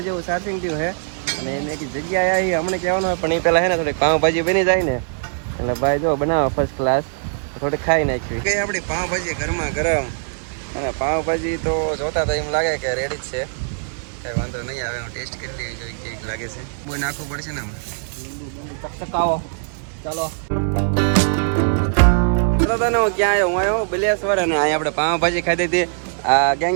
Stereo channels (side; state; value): left; silent; digital silence